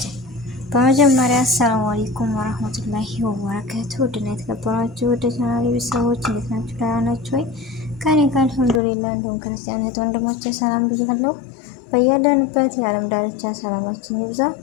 በመጀመሪያ አሰላሙ አለይኩም ወራህመቱላሂ ወበረካቱ። ውድና የተከበራችሁ ወደ ቻናሌ ቤተሰቦች እንዴት ናችሁ? ደህና ናችሁ ወይ? ከኔ ጋር አልሐምዱሊላህ። እንደውም ክርስቲያናት ወንድሞቼ ሰላም ብያለሁ። በያለንበት የዓለም ዳርቻ ሰላማችን ይብዛ።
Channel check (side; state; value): right; drops out; at 8.8 s